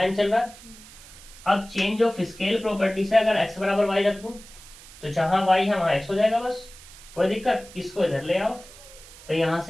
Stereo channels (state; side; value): noise; right; hiss, 19 dB below the sound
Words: n चल रहा है। अब चेंज ऑफ स्केल प्रॉपर्टी से अगर x बराबर y रख दूं तो जहां y है वहां x हो जाएगा, बस कोई दिक्कत। इसको इधर ले आओ तो यहां